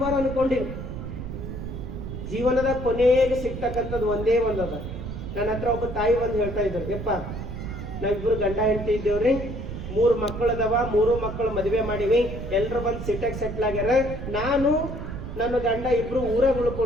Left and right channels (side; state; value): right; noise; rumble, 7 dB below the sound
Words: ಅನ್ಕೊಂಡಿವಿ. ಜೀವನದ ಕೊನೆಗೆ ಸಿಗ್ತಕ್ಕಂಥದ್ದು ಒಂದೇ ಒಂದದ. ನನ್ನ ಹತ್ರ ಒಬ್ಬ ತಾಯಿ ಬಂದು ಹೇಳ್ತಾ ಇದ್ರು, ಯಪ್ಪ ನಾವಿಬ್ರು ಗಂಡ ಹೆಂಡತಿ ಇದ್ದೇವ್ರಿ, 3 ಮಕ್ಕಳದವ, 3 ಮಕ್ಕಳು ಮದುವೆ ಮಾಡಿವಿ, ಎಲ್ರು ಬಂದು ಸಿಟ್ಟಾಗಿ ಸೆಟ್ಲ್ ಆಗ್ಯಾರ. ನಾನು ನನ್ನ ಗಂಡ ಇಬ್ರು ಊರಾಗ